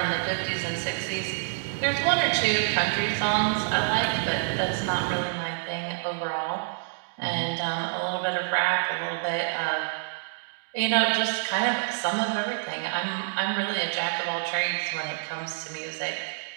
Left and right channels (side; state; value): left; silent; digital silence